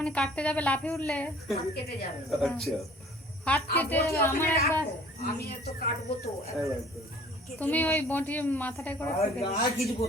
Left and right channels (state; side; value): normal; both; correlation 0.51